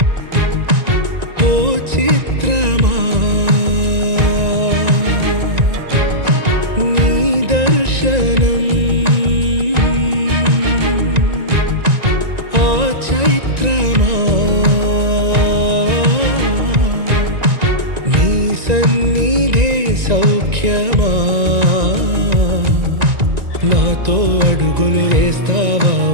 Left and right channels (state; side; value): late; left; 1.9 ms